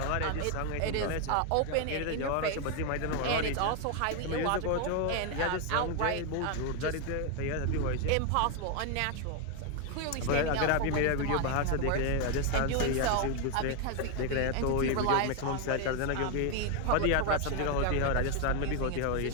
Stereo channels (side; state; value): both; different; correlation 0.01